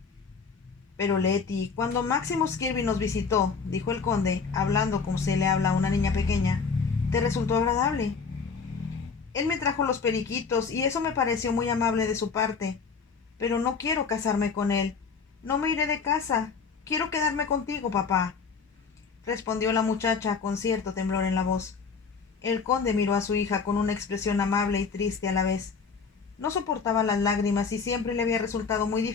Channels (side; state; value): right; quieter; 5.3 dB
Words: «Pero Letty, cuando Maximus Kirby nos visitó», dijo el conde, hablando como se le habla a una niña pequeña, «¿te resultó agradable?». «Él me trajo los periquitos y eso me pareció muy amable de su parte. Pero no quiero casarme con él. No me iré de casa. Quiero quedarme contigo, papá», respondió la muchacha con cierto temblor en la voz. El conde miró a su hija con una expresión amable y triste a la vez. No soportaba las lágrimas y siempre le había resultado muy